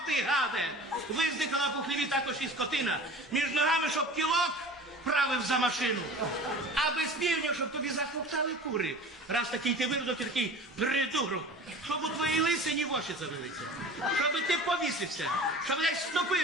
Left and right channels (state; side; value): normal; both; correlation 0.40